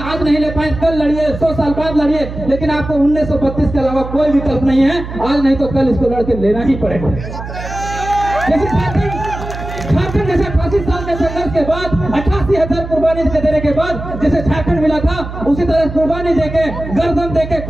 नहीं ले पाए कल लड़िए, 100 साल बाद लड़िए, लेकिन आपको 1932 के अलावा कोई विकल्प नहीं है। आज नहीं तो कल इसको लड़के लेना ही पड़ेगा। जैसे झारखंड जैसे 85 साल के संघर्ष के बाद 88,000 कुर्बानी देने के बाद जैसे झारखंड मिला था, उसी तरह कुर्बानी देके, गर्दन देके,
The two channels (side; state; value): right; noise; hum, 9 dB below the sound